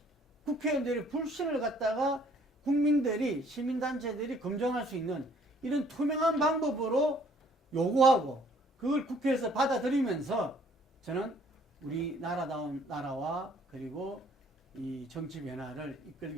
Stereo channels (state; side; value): normal; both; correlation 0.60